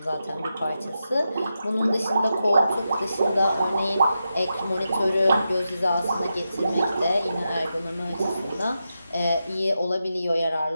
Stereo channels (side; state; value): both; inverted; correlation -0.88